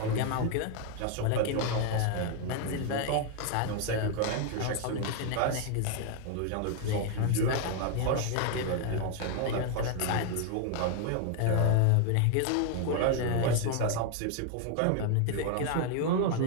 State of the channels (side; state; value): both; different; correlation 0.00